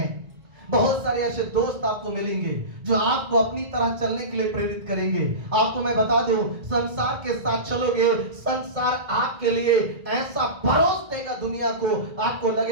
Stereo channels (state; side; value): late; left; 1.9 ms